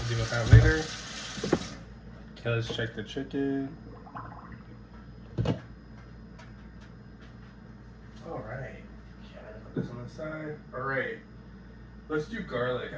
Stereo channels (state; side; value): identical; both; correlation 1.00